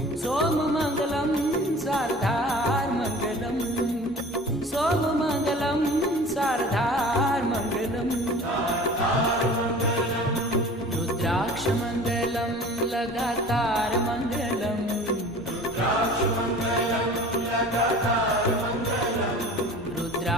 सोम मंगलम शारदार मंगलम सोम मंगलम शारदार मंगलम रुद्राक्ष मंगलम लगातार मंगलम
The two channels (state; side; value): normal; both; correlation 0.42